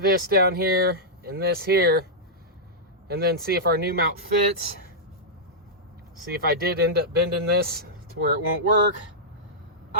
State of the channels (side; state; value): both; normal; correlation -0.11